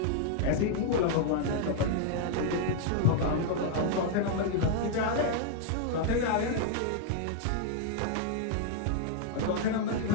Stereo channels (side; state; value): both; different; correlation -0.01